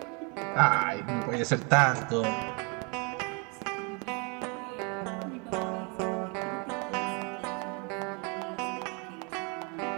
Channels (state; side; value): quieter; left; 32.9 dB